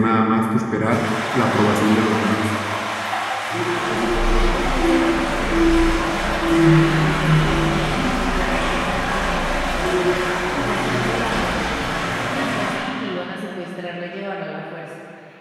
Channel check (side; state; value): both; identical; correlation 1.00